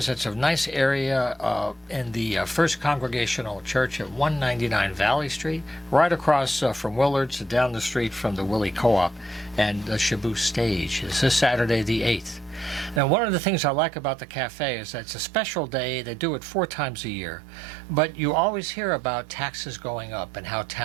It's a nice area in the First Congregational Church at 199 Valley Street, right across from Willard's, down the street from the Willie Co-op and the Shabu Stage. It's this Saturday the 8th. Now, one of the things I like about the cafe is that it's a special day. They do it 4 times a year. But you always hear about taxes going up and how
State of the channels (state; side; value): drops out; left; at 13.0 s